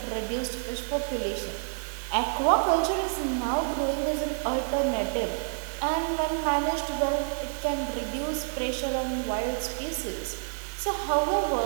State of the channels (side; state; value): left; silent; digital silence